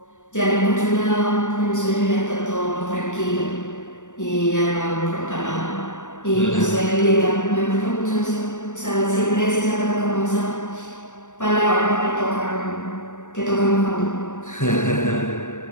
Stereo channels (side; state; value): right; late; 0.85 ms